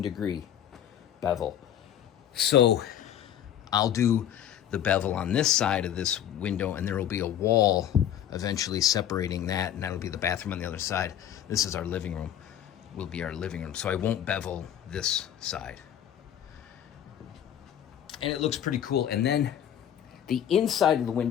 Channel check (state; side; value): quieter; right; 10.3 dB